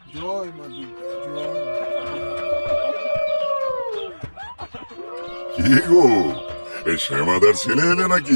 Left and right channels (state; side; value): inverted; both; correlation -1.00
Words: জয় মা দুর্গা, জয়। কি গো, এই শ্যামাদার ছেলে এলে নাকি?